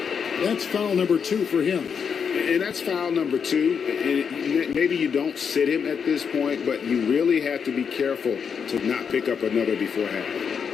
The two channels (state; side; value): quieter; right; 6.7 dB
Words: That's foul number 2 for him. And that's foul number 2. And maybe you don't sit him at this point, but you really have to be careful to not pick up another before half.